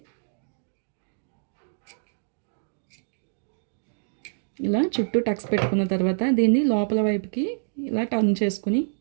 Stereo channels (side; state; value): left; silent; digital silence